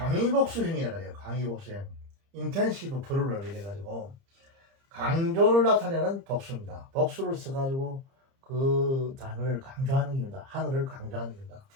해요. 강의복수형. 인텐시브 프루럴 이래가지고 강조를 나타내는 복수입니다. 복수를 써가지고 그 단어를 강조하는 겁니다. 하늘을 강조하는 겁니다.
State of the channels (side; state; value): left; late; 30 ms